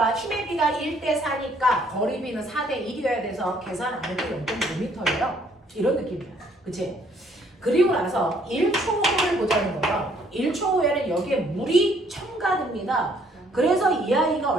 힘의 비가 1대 4니까 거리비는 4대 1이어야 돼서 계산 안 해도 0.5m예요. 이런 느낌이야. 그치? 그리고 나서 1초 후를 보자는 거예요. 1초 후에는 여기에 물이 첨가됩니다. 그래서 이 아이가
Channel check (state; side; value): normal; both; correlation 0.64